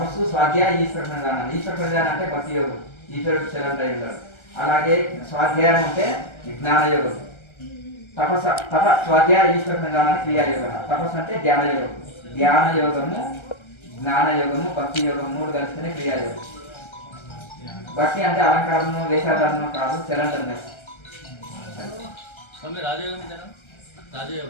స్వాధ్యాయ, ఈశ్వర ప్రధానం. ఈశ్వర ప్రధానం అంటే భక్తి యోగం, ఈశ్వరుడు శరణ్ అయి ఉన్నాడు. అలాగే స్వాధ్యాయం అంటే జ్ఞాన యోగం, స్వాధ్యాయ ఈశ్వర ప్రధానానికి క్రియాయోగం. తపస్సు అంటే ధ్యాన యోగం, ధ్యాన యోగము, జ్ఞాన యోగము, భక్తి యోగం 3 కలిస్తేనే క్రియాయోగం. భక్తి అంటే అలంకారము, వేషాధారణము కాదు, శరణ్.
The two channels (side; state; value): right; late; 1.3 ms